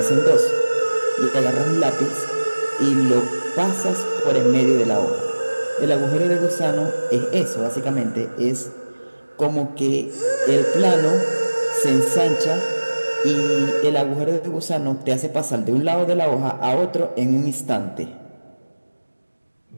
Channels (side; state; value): both; inverted; correlation -1.00